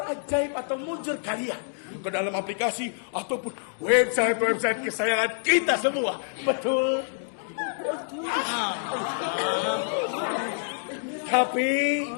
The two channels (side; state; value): right; silent; digital silence